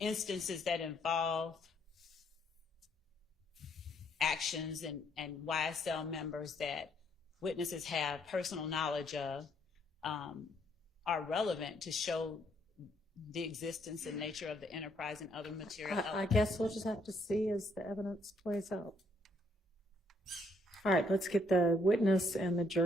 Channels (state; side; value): normal; both; correlation 0.70